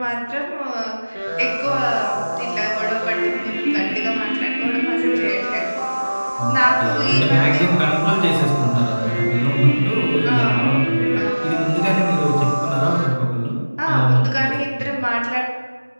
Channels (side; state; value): both; inverted; correlation -1.00